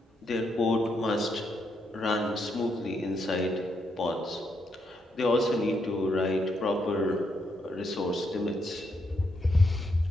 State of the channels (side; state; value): both; normal; correlation 0.79